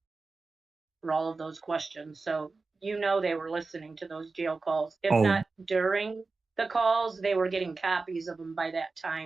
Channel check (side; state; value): left; quieter; 3.9 dB